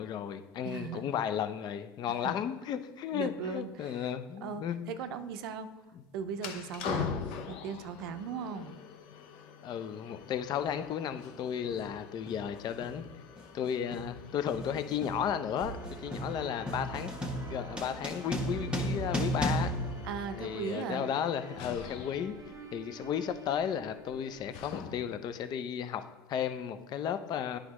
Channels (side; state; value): right; quieter; 4.8 dB